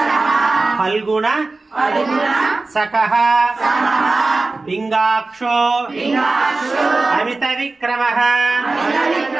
పింగాక్షో అమిత విక్రమః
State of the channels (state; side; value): quieter; left; 3.5 dB